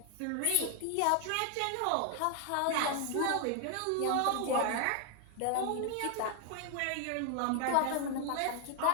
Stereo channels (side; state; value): both; different; correlation 0.00